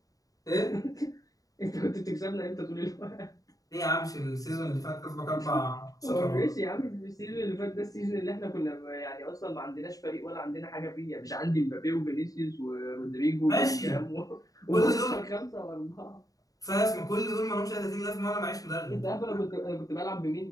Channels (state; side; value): late; right; 0.17 ms